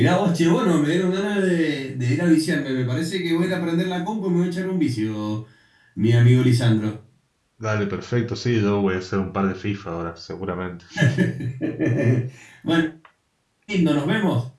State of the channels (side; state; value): both; identical; correlation 1.00